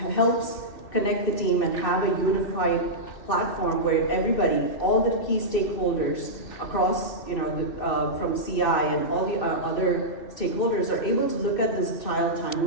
helps connect the team and have a unified platform where everybody, all the key stakeholders across, from CI and all the other stakeholders are able to look at this trial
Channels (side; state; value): right; late; 2.6 ms